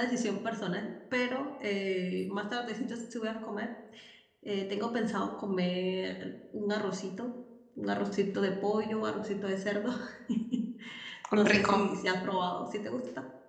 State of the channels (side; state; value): both; identical; correlation 1.00